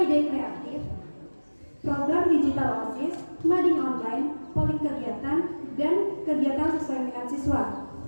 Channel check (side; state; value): both; inverted; correlation -1.00